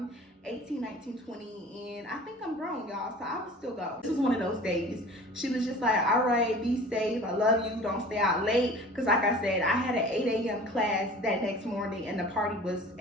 18, 19, 20, and I think I'm grown, y'all, so I would still go. This was one of those days. She was just like, all right, be safe, I love you, don't stay out late, because like I said, I had an 8 a.m. class that next morning, and the party was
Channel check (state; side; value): normal; both; correlation 0.43